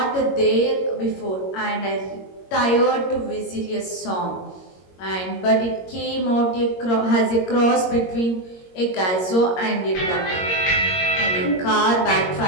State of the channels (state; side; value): late; right; 22 ms